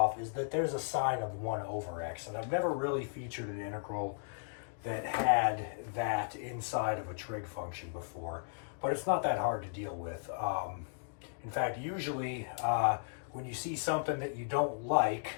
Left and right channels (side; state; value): right; silent; digital silence